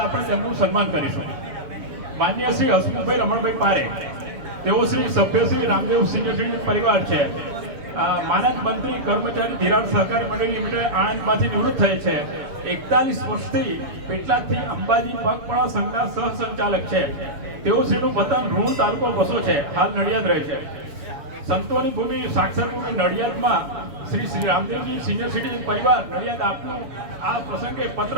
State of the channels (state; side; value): late; left; 7.1 ms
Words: આપણે તેમનું સન્માન કરીશું. માન્ય શ્રી હસમુખભાઈ રમણભાઈ પારે, તેઓ શ્રી સભ્ય શ્રી રામદેવ સિનિયર સિટીઝન પરિવાર છે. માનદ મંત્રી કર્મચારી ધિરાણ સહકારી મંડળી લિમિટેડ આણંદમાંથી નિવૃત્ત થયે છે. 41 વર્ષથી પેટલાદથી અંબાજી પગપાળા સંઘના સહસંચાલક છે. તેઓ શ્રીનું વતન રૂણ તાલુકો વસો છે, હાલ નડિયાદ રહે છે. સંતોની ભૂમિ સાક્ષર ભૂમિ નડિયાદમાં શ્રી રામદેવજી સિનિયર સિટીઝન પરિવાર નડિયાદ આપનું આ પ્રસંગે